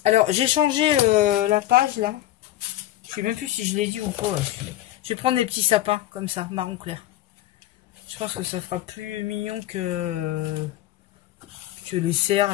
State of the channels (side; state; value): right; quieter; 14.3 dB